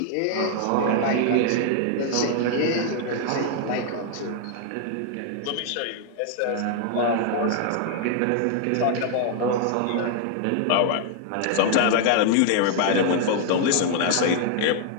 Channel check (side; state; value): both; different; correlation 0.00